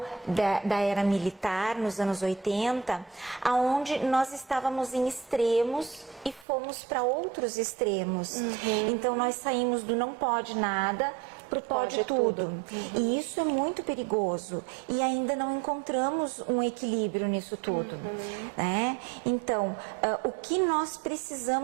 da era militar, nos anos 80, aonde nós estávamos em extremos e fomos para outros extremos. Então nós saímos do não pode nada para o pode tudo. E isso é muito perigoso. E ainda não encontramos um equilíbrio nisso tudo. Né? Então, o que nós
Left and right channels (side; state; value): left; drops out; at 6.5 s